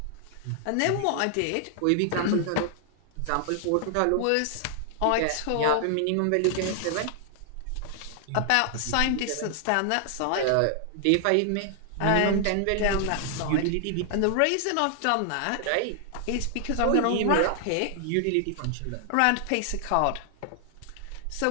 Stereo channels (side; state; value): both; different; correlation 0.00